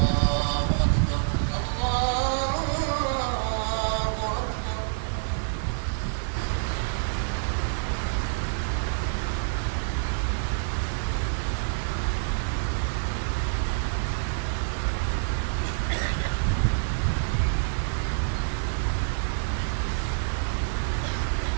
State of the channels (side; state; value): left; silent; digital silence